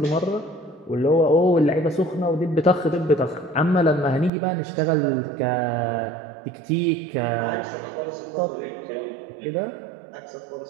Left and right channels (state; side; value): drops out; left; at 4.3 s